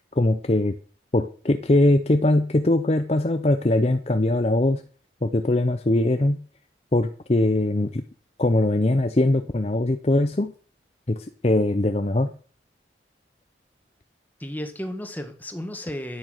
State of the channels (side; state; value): both; normal; correlation 0.76